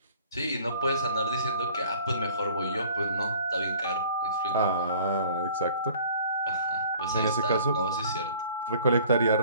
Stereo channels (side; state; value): both; inverted; correlation -0.51